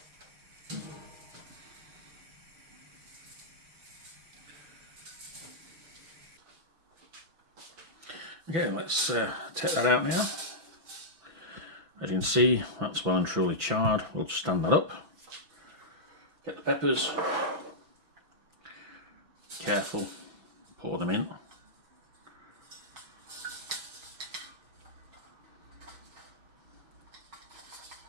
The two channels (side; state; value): left; late; 6.0 ms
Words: Okay, let's take that out now. As you can see, that's well and truly charred. We'll stand that up. Get the peppers. Careful, pour them in.